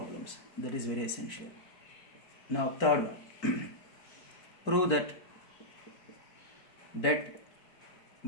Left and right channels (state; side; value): late; right; 4.5 ms